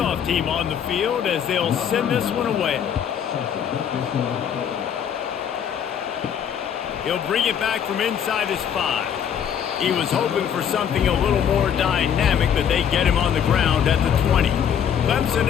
team on the field as they'll send this one away. He'll bring it back from inside his 5. He was hoping for something a little more dynamic, but they get him on the ground at the 20. Clemson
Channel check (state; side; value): quieter; right; 8.5 dB